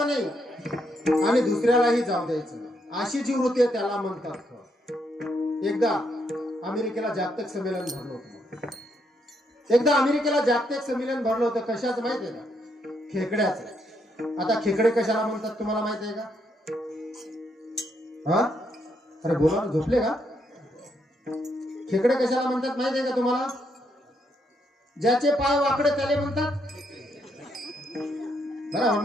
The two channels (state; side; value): normal; both; correlation 0.76